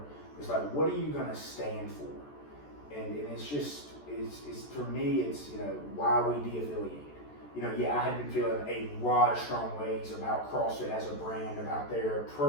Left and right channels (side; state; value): right; late; 14 ms